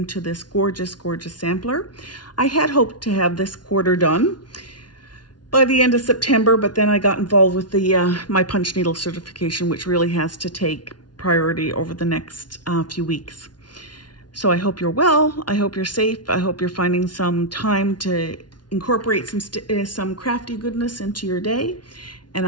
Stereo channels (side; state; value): right; late; 0.70 ms